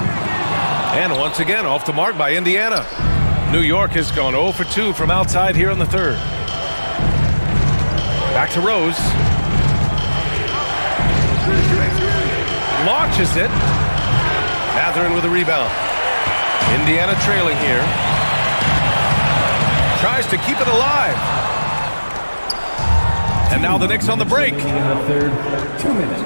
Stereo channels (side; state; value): both; inverted; correlation -1.00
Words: And once again, off the mark by Indiana. New York has gone 0 for 2 from outside here in the third. Back to Rose. Launches it. Matherin with a rebound. Indiana trailing here. Tries to keep it alive. And now the Knicks on the break. In the third, 2